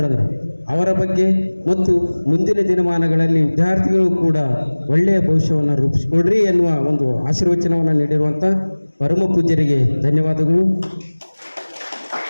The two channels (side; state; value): both; inverted; correlation -1.00